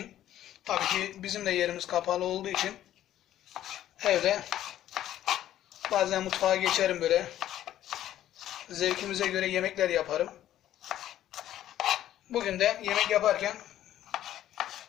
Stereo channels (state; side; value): quieter; right; 12.4 dB